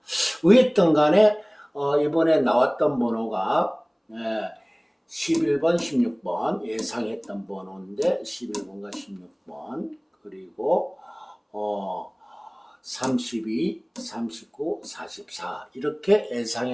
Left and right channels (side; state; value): both; identical; correlation 1.00